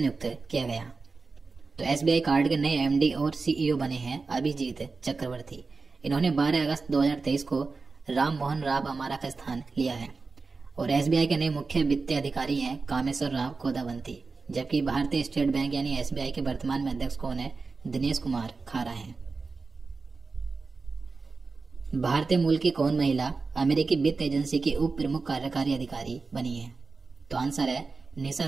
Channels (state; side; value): quieter; left; 4.1 dB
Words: किया गया? तो एसबीआई कार्ड के नए एमडी और सीईओ बने हैं अभिजीत चक्रवर्ती। इन्होंने 12 अगस्त 2023 को राम मोहन राव अमारा का स्थान लिया है और एसबीआई के नए मुख्य वित्तीय अधिकारी हैं कामेश्वर राव कोदावंती। जबकि भारतीय स्टेट बैंक यानी एसबीआई के वर्तमान में अध्यक्ष कौन है? दिनेश कुमार खारा हैं। भारतीय मूल की कौन महिला अमेरिकी वित्त एजेंसी की उप प्रमुख कार्यकारी अधिकारी बनी है? तो आंसर है निशा